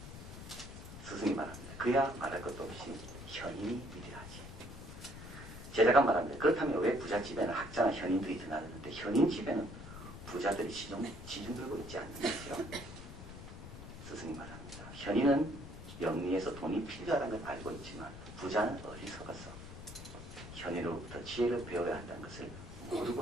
스승이 말합니다. 그야 말할 것도 없이 현인이 위대하지. 제자가 말합니다. 그렇다면 왜 부잣집에는 학자나 현인들이 드나드는데 현인집에는 부자들이 시중 들고 있지 않는 거죠? 스승이 말합니다. 현인은 영리에서 돈이 필요하다는 걸 알고 있지만 부자는 어리석어서 현인으로부터 지혜를 배워야 한다는 것을 모르고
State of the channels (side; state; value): left; noise; rumble, 12 dB below the sound